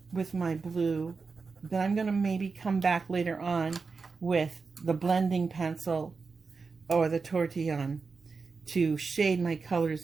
with my blue, then I'm going to maybe come back later on with the blending pencil or the Tortillon to shade my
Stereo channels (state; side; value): quieter; left; 4.7 dB